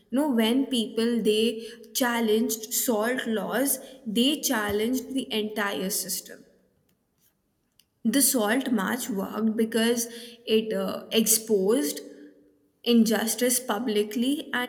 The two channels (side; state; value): both; identical; correlation 1.00